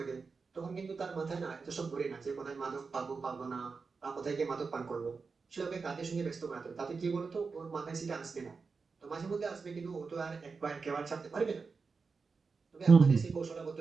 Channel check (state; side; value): quieter; left; 4.8 dB